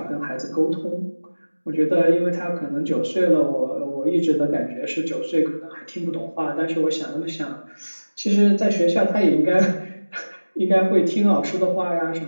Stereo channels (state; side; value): inverted; both; correlation -1.00